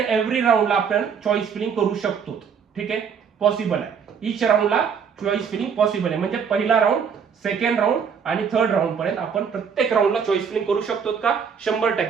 एव्हरी राऊंडला आपण चॉईस फिलिंग करू शकतो. ठीक आहे, पॉसिबल आहे. ईच राऊंडला चॉईस फिलिंग पॉसिबल आहे. म्हणजे पहिला राऊंड सेकंड राऊंड आणि थर्ड राऊंड पर्यंत आपण प्रत्येक राऊंडला चॉईस फिलिंग करू शकतो का?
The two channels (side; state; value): left; quieter; 6.8 dB